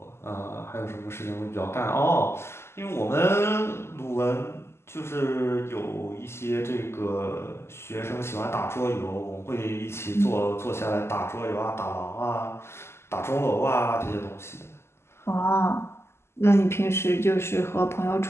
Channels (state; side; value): late; right; 0.12 ms